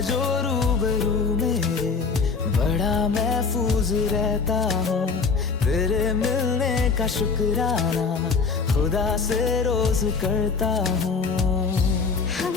जो रूबरू मेरे, बड़ा महफूज रहता हूँ। तेरे मिलने का शुक्राना खुदा से रोज करता हूँ।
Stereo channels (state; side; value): quieter; right; 5.0 dB